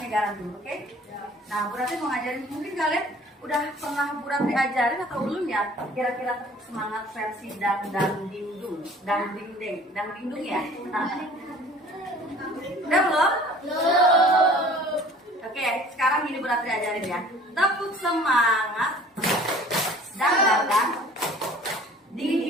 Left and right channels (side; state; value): both; normal; correlation 0.49